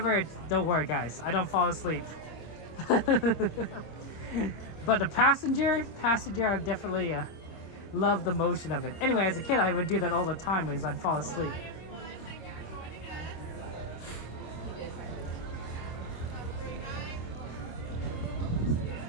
don't worry, guys. I don't fall asleep. But the passenger, I definitely love the motion of it. Anyway, as a kid, I would do that all the time because I'd fall asleep.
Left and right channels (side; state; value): right; late; 26 ms